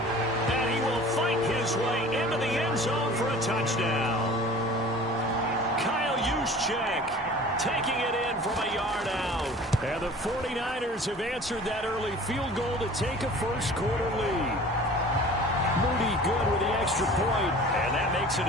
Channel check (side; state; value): both; normal; correlation 0.44